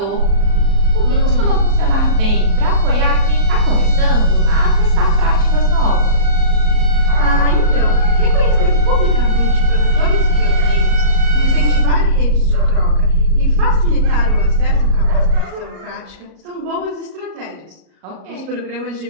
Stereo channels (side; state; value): left; late; 37 ms